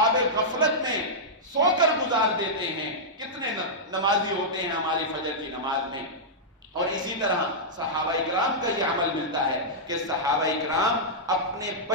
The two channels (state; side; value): normal; both; correlation -0.10